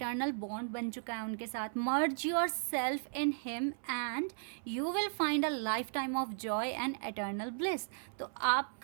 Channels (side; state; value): left; silent; 54 dB below the other